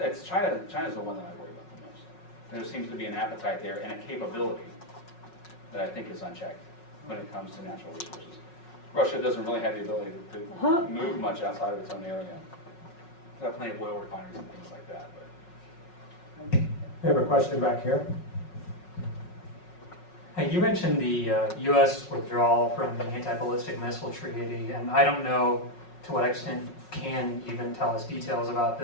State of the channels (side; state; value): right; late; 5.4 ms